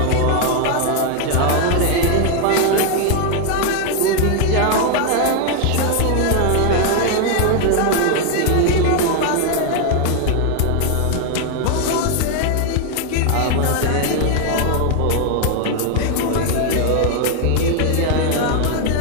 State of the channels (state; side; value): different; both; correlation 0.00